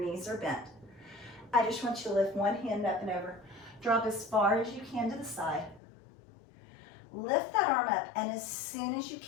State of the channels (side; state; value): right; drops out; at 5.8 s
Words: are bent. I just want you to lift 1 hand up and over. Drop as far as you can to the side. Lift that arm up, and as soon as you